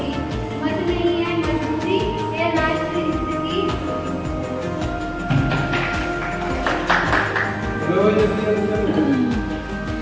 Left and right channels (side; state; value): both; identical; correlation 1.00